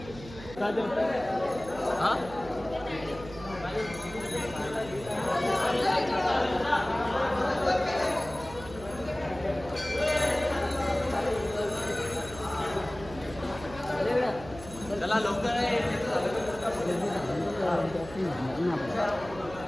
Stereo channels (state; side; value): noise; right; hum, 15 dB below the sound